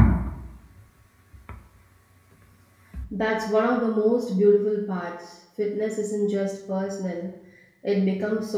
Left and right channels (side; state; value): both; identical; correlation 1.00